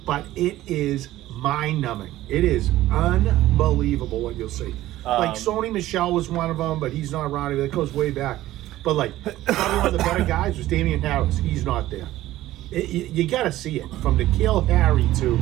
but it is mind-numbing. It is unbelievable what you'll see. Like Sony Michel was one of them, but he's not around. That goes way back. But like probably one of the better guys was Damian Harris. He's not there. You got to see it from N'Keal Harry to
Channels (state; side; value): quieter; left; 15.2 dB